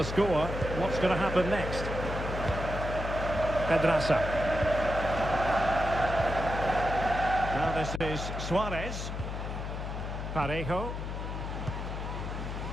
score. What's going to happen next? Pedraza. Now this is Suarez. Parejo.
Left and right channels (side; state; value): left; noise; hum, 5 dB below the sound